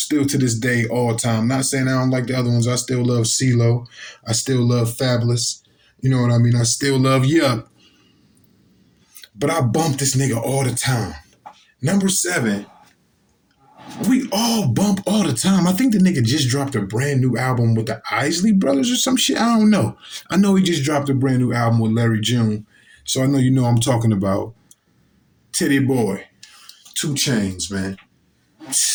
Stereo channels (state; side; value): identical; both; correlation 1.00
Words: to this day, all time. Not saying I don't like the other ones. I still love CeeLo. I still love Fabolous. You know what I mean? I still love Yup. But I bump this nigga all the time. Number 7, we all bump all the time. I think the nigga just dropped a brand new album with the Isley Brothers or some shit. I don't know. I know he just dropped a brand new album with Larry June. So I know you know I'm talking about Titty Boy, 2 Chainz, man.